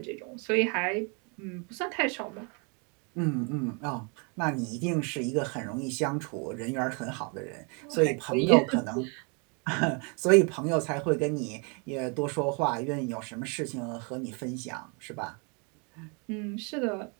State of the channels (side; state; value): left; quieter; 34.7 dB